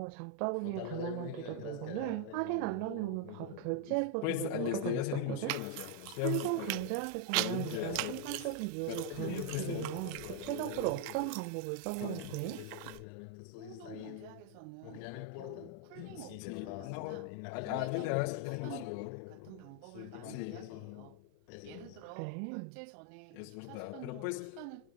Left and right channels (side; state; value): both; different; correlation 0.01